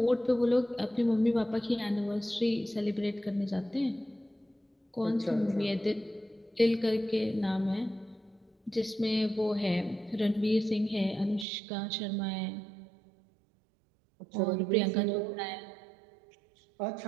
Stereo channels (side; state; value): left; drops out; at 11.5 s